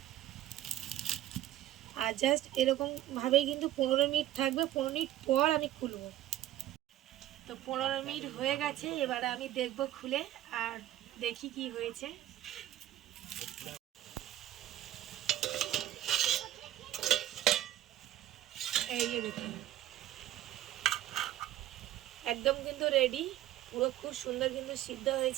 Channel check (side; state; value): left; quieter; 13.6 dB